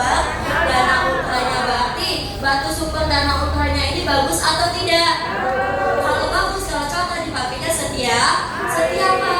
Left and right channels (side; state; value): both; identical; correlation 1.00